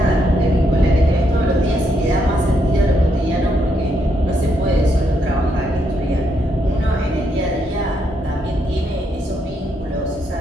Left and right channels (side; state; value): both; normal; correlation 0.77